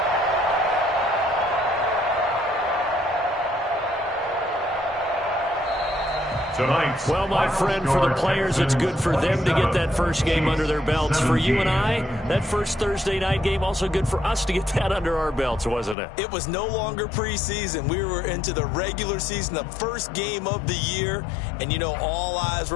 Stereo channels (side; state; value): right; drops out; at 16.0 s